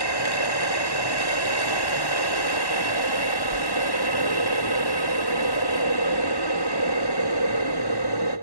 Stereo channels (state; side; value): late; right; 1.1 ms